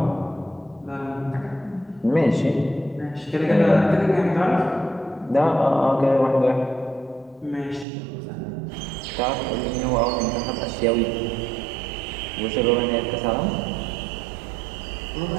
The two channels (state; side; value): drops out; left; at 7.9 s